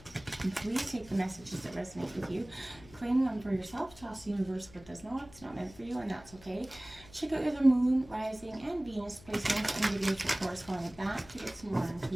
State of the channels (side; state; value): left; noise; hum, 21 dB below the sound